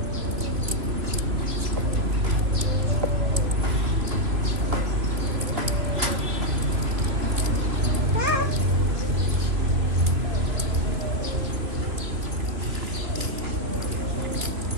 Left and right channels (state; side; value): late; left; 3.0 ms